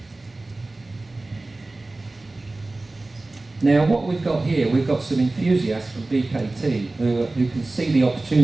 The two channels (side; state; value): left; quieter; 3.0 dB